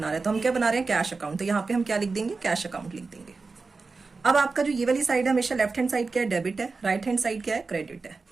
रहे हैं। तो हम क्या बना रहे हैं? Cash account. तो यहाँ पे हम क्या लिख देंगे? कैश अकाउंट लिख देंगे। अब आपका जो ये वाली साइड है, हमेशा लेफ्ट हैंड साइड क्या है? डेबिट है। राइट हैंड साइड क्या है? क्रेडिट है।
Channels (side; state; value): left; quieter; 4.2 dB